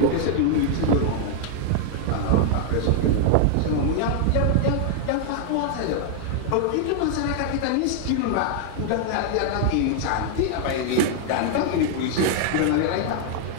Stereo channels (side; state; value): both; different; correlation 0.00